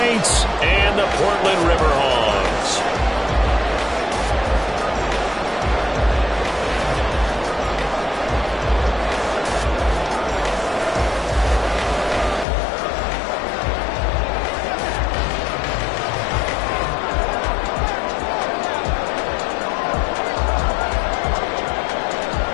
and the Portland Riverhawks.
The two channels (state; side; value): drops out; right; at 12.5 s